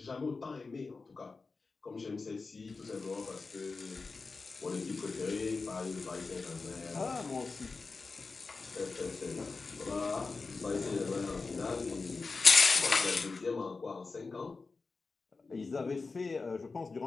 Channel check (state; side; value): quieter; right; 4.1 dB